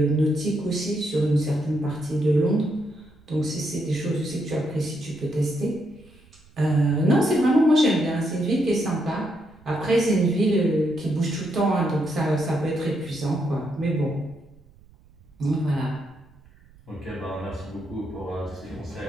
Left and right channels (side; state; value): right; noise; rumble, 27 dB below the sound